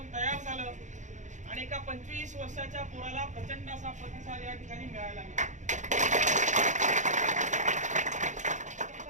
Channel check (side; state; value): left; late; 0.35 ms